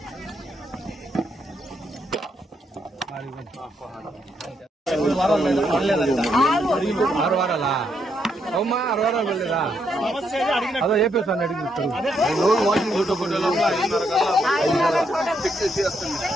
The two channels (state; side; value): normal; both; correlation 0.77